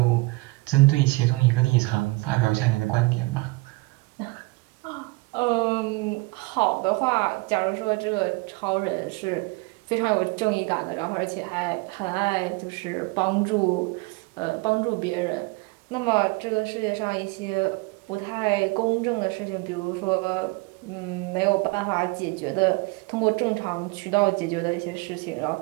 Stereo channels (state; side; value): quieter; left; 24.9 dB